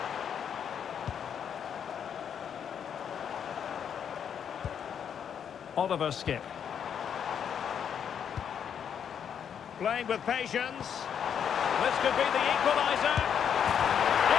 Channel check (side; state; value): right; quieter; 8.1 dB